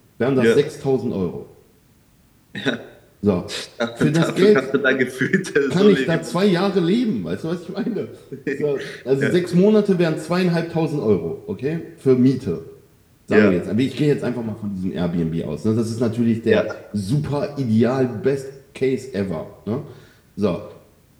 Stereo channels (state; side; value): identical; both; correlation 1.00